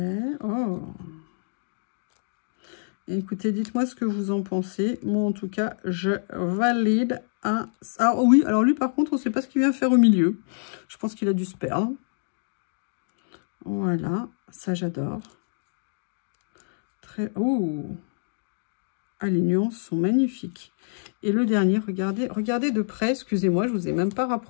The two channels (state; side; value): silent; right; digital silence